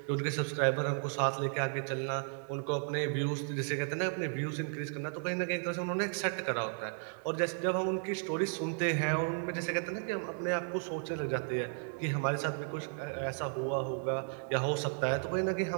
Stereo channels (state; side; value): silent; left; 55 dB below the other